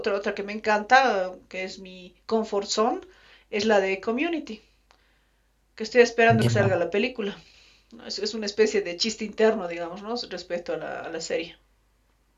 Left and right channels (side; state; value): both; identical; correlation 1.00